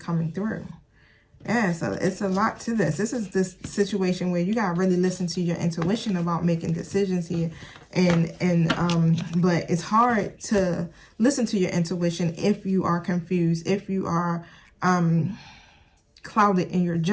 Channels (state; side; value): identical; both; correlation 1.00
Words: through. Yeah, so it's a lot to this. This is this situation where you gotta really listen to your intuition about making decisions here. But it's hard to listen to your intuition if you are confused, if you are clouded in your